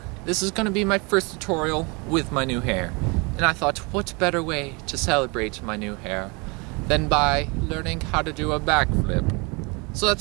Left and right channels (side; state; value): left; quieter; 29.4 dB